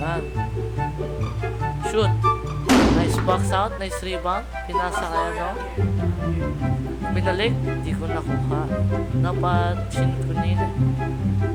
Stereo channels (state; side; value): identical; both; correlation 1.00